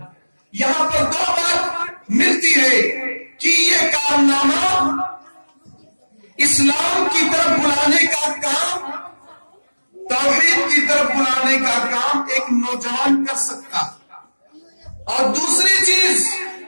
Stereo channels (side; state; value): both; inverted; correlation -1.00